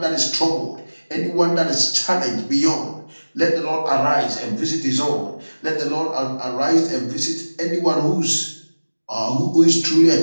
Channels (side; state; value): both; inverted; correlation -1.00